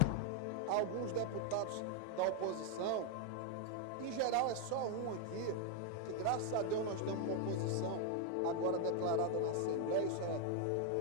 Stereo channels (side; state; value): both; different; correlation 0.00